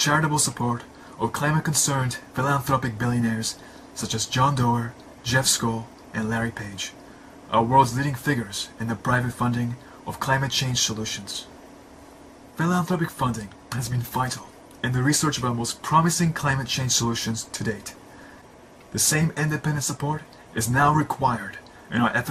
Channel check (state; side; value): identical; both; correlation 1.00